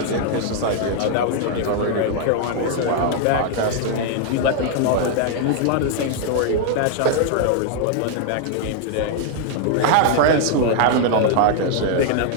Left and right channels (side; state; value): both; different; correlation 0.00